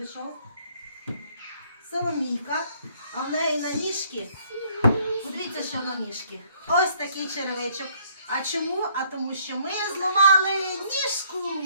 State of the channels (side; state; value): both; inverted; correlation -0.64